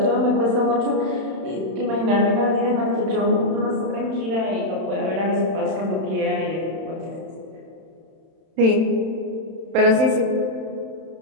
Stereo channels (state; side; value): late; left; 31 ms